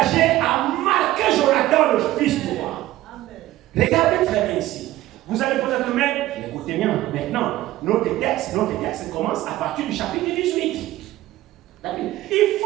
a marqué Jonathan, le fils du roi. Regardez très bien ici. Vous allez peut-être mettre, écoutez bien, maintenant, notre texte commence à partir du chapitre 18. Il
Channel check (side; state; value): left; quieter; 15.8 dB